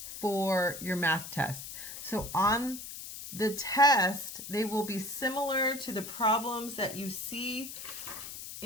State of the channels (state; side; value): noise; left; hiss, 10 dB below the sound